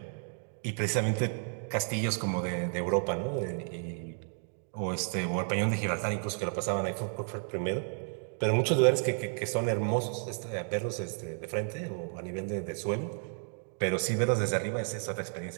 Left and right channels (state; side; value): silent; left; 56 dB below the other